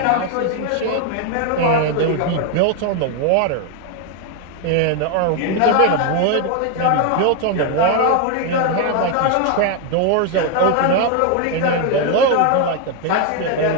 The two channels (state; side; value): different; both; correlation 0.01